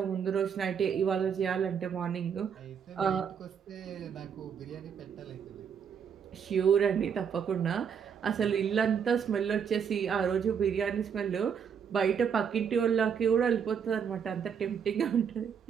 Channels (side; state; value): left; quieter; 7.3 dB